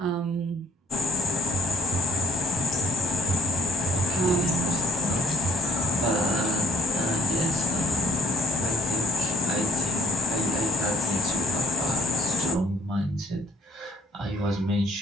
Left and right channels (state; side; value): normal; both; correlation 0.62